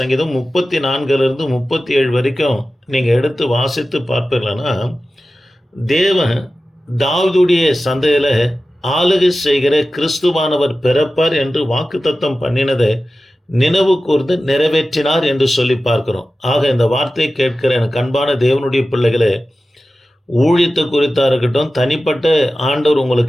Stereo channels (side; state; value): both; normal; correlation 0.95